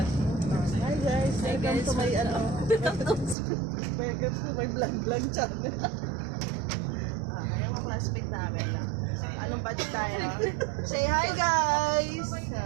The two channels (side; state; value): left; drops out; at 3.4 s